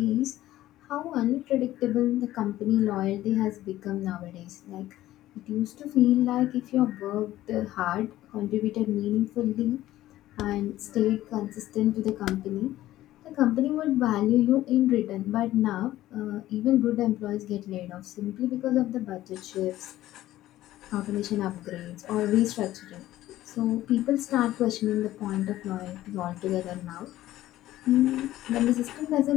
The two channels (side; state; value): right; quieter; 14.7 dB